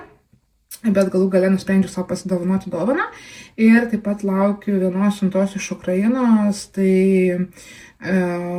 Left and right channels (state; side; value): identical; both; correlation 1.00